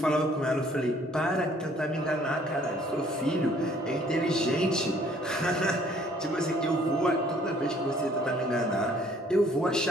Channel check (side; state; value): both; normal; correlation 0.60